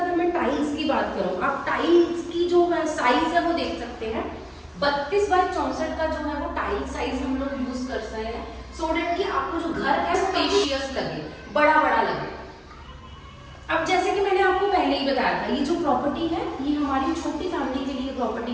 मैं टाइल्स की बात करूँ, आप टाइल्स की जो है साइज है वो देख सकते हैं। 32 बाई 64 का जो है वो टाइल साइज हम लोग यूज कर सकते हैं, सो डेट कि आपको जो घर है स्पेशियस लगे, बड़ा बड़ा लगे। अब जैसे कि मैंने आपको पहले ही बताया था, ये जो प्रॉपर्टी है ये हमारी छोटी फैमिली के लिए प्रॉपर्टी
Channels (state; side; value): identical; both; correlation 1.00